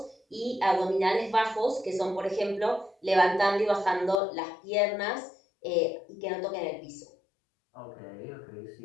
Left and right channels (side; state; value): right; drops out; at 4.2 s